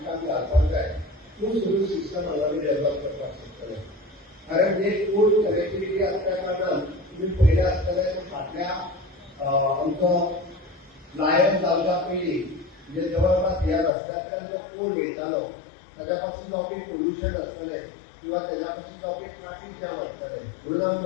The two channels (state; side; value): drops out; right; at 13.9 s